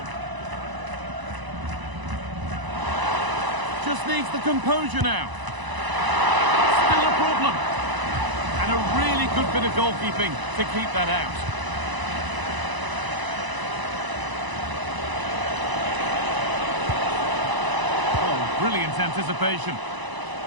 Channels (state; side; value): late; left; 1.0 ms